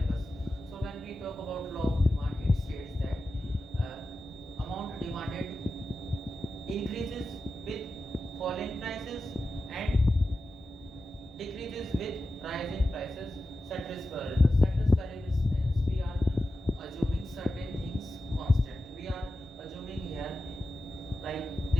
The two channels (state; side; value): normal; both; correlation 0.92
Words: So when we talk about law of demand, it states that amount demanded increases with falling prices and decreases with rise in prices. Ceteris paribus. Ceteris paribus means we are assuming certain things constant. We are assuming here, like,